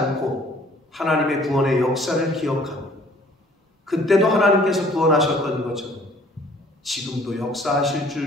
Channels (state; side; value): normal; both; correlation 0.56